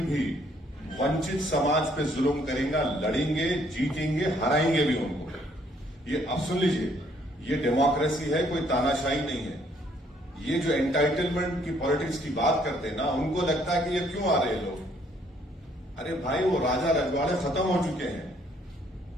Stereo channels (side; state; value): both; normal; correlation 0.66